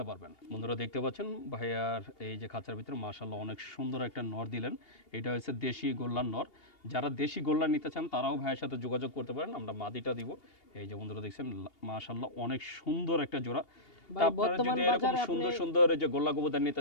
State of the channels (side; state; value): right; late; 2.8 ms